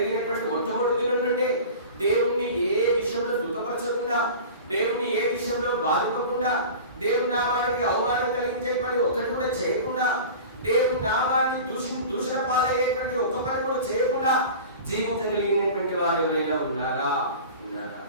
మొట్టమొదటి దినం నుండి దేవుణ్ణి ఏ విషయంలో దుఃఖపరచకుండా, దేవుణ్ణి ఏ విషయంలో బాధించకుండా, దేవుని నామానికి అవమానం కలిగించే పని ఒక్కటి కూడా చేయకుండా, దేవుని నామాన్ని దూషణ పాలయ్యేటువంటి ఒక్క పని కూడా చేయకుండా జీవించగలిగినటువంటి వారు ఎవరైనా ఉన్నారా?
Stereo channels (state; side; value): inverted; both; correlation -0.37